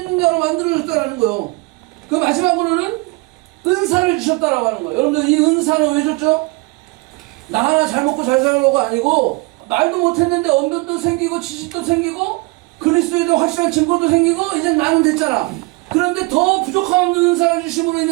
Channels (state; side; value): quieter; left; 26.1 dB